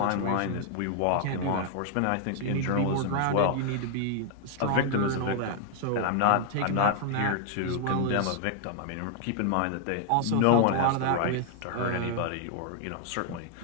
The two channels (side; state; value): both; different; correlation -0.01